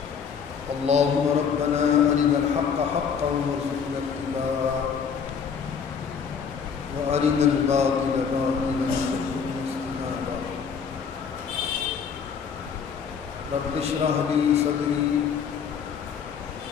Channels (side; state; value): right; quieter; 6.7 dB